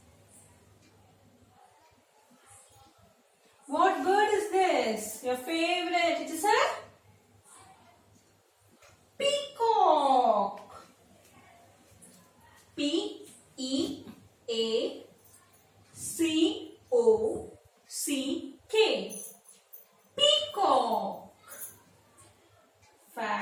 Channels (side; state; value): both; identical; correlation 1.00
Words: What bird is this? Your favorite? It is a peacock. P-E-A-C-O-C-K. Peacock.